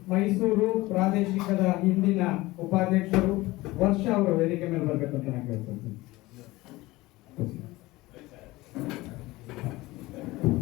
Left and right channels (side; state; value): right; quieter; 19.8 dB